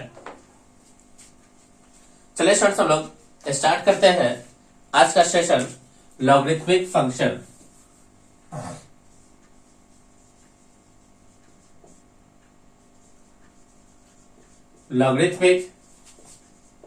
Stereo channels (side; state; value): both; identical; correlation 1.00